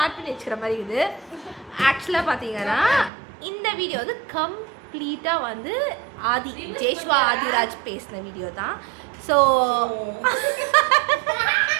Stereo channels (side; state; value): left; drops out; at 3.1 s